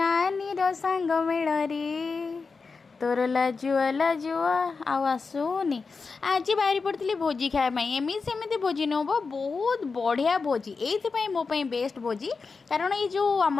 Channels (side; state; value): right; quieter; 4.6 dB